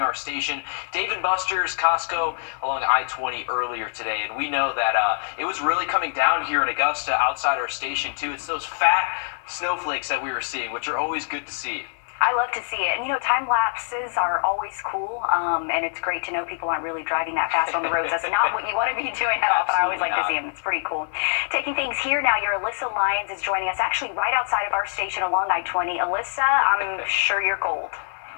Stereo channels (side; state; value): right; silent; digital silence